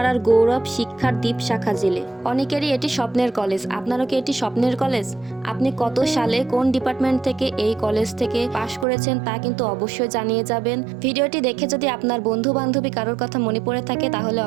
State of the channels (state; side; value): drops out; left; at 8.8 s